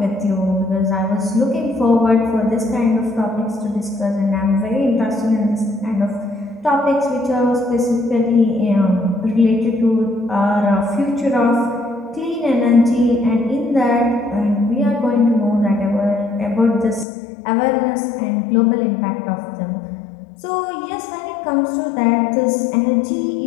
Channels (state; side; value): drops out; right; at 17.1 s